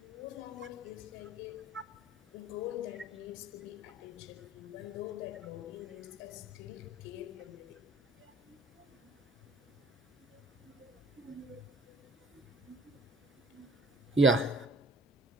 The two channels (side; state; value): both; normal; correlation 0.53